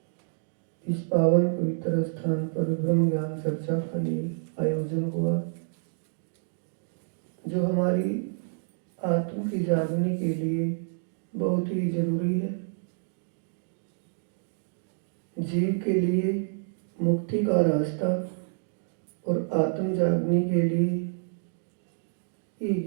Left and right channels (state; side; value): silent; left; digital silence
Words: इस पावन पवित्र स्थान पर ब्रह्म ज्ञान चर्चा का ये आयोजन हुआ, जो हमारी आत्म की जागने के लिए बहुत ही जरूरी है। जीव के लिए मुक्ति का रास्ता और आत्म जागने के लिए ये